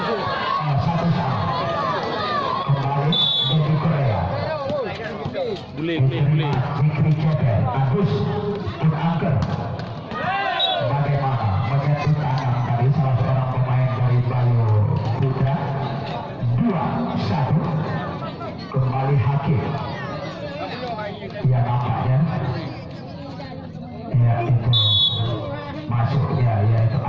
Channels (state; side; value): identical; both; correlation 1.00